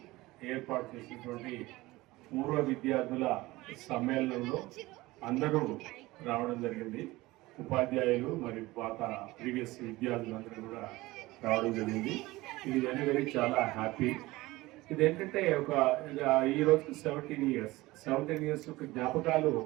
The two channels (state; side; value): quieter; left; 19.7 dB